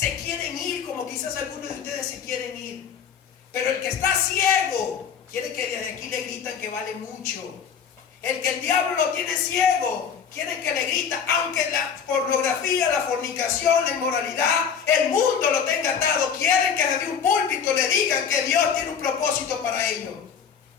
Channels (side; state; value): right; quieter; 7.2 dB